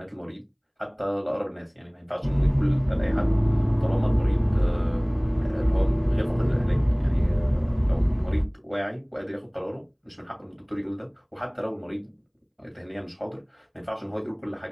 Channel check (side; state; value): both; identical; correlation 1.00